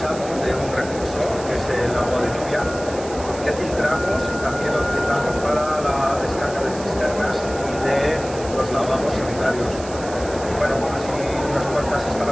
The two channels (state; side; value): noise; right; hiss, 15 dB below the sound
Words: de un recurso que es el agua de lluvia, que filtramos y también lo utilizamos para la descarga de cisternas y de los lavabos sanitarios. Bueno, así unas cuantas